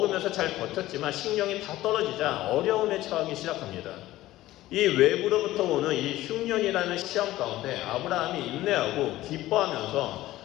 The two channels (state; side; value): quieter; right; 15.9 dB